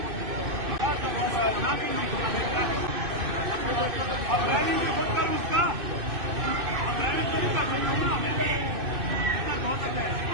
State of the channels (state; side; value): late; left; 2.6 ms